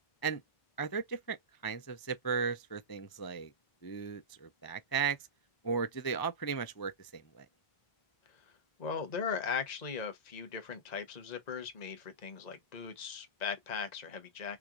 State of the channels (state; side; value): late; right; 1.0 ms